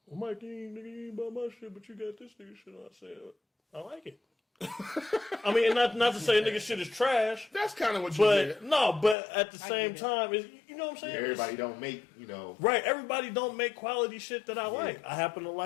well, Mike, you ain't buy my shit, but you got this nigga shit. I said, I like it. I mean, not to say nigga shit is trash. That's kind of what you did. But at the same time, you know what I'm saying? Everybody don't make, you know. Right, everybody don't make quality shit that I like. I happen to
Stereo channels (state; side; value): drops out; right; at 9.2 s